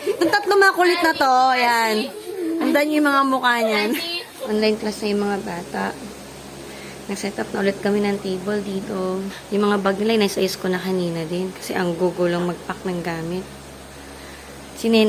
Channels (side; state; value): both; identical; correlation 1.00